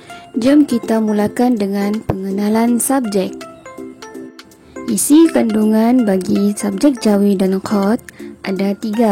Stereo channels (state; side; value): identical; both; correlation 1.00